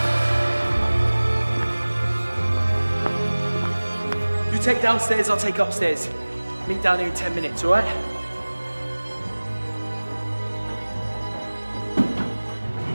You take downstairs, I'll take upstairs. Meet down here in 10 minutes, all right?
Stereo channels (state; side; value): inverted; both; correlation -1.00